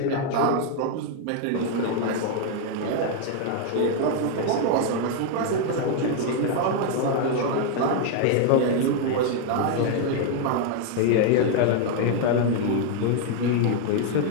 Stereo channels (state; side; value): different; both; correlation 0.00